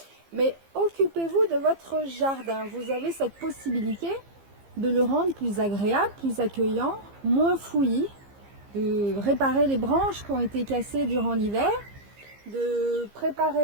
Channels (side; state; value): left; late; 15 ms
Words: Mais occupez-vous de votre jardin. Vous avez cette possibilité de le rendre plus agréable, plus accueillant, moins fouillis, de réparer les branches qui ont été cassées durant l'hiver, de